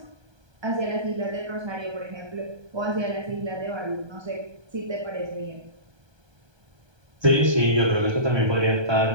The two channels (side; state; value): left; late; 1.3 ms